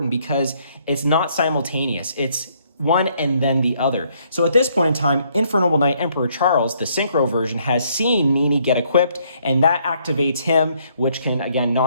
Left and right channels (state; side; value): inverted; both; correlation -0.68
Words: because it's not simultaneous. It's one and then the other. So at this point in time, Infernoble Knight Emperor Charles, the synchro version, has seen Nini get equipped, and that activates him, which can, again,